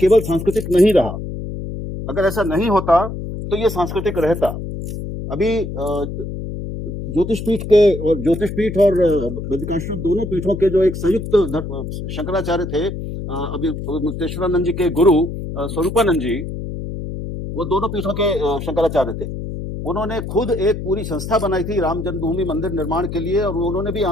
सांस्कृतिक नहीं रहा। अगर ऐसा नहीं होता तो ये सांस्कृतिक रहता। अभी ज्योतिषपीठ और बद्रिकाश्रम, दोनों पीठों के जो एक संयुक्त शंकराचार्य थे, अभी मुक्तेश्वरानंद जी के गुरु स्वरूपानंद जी, वो दोनों पीठों के शंकराचार्य थे। उन्होंने खुद एक पूरी संस्था बनाई थी राम जन्मभूमि मंदिर निर्माण के लिए, और उन्होंने भी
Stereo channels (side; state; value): left; noise; hum, 7 dB below the sound